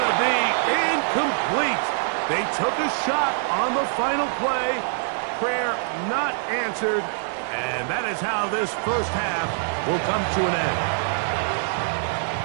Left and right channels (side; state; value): left; silent; digital silence